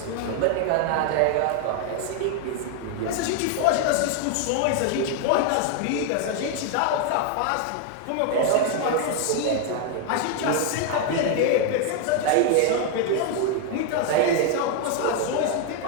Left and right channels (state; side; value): different; both; correlation 0.01